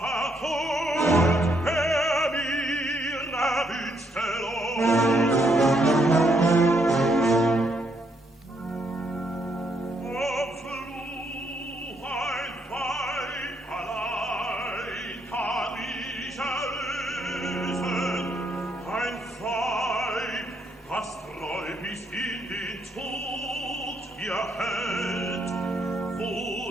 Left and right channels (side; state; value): both; normal; correlation 0.74